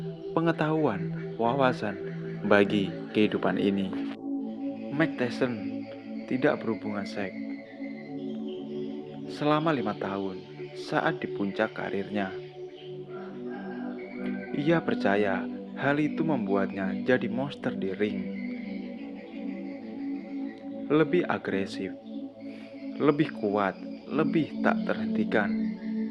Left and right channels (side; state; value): both; identical; correlation 1.00